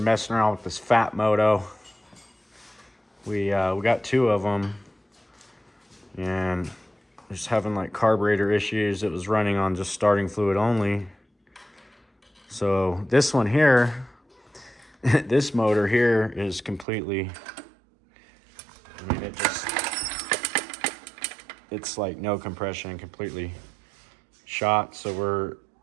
messing around with this fat moto. We got 2 of them, and just having like carburetor issues. It was running on just starting fluid only. So this one here, this motor here is completely, I mean, it's like no compression, completely shot. So we're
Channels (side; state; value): left; drops out; at 16.9 s